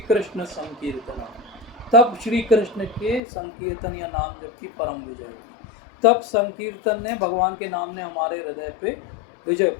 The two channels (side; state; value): right; drops out; at 3.2 s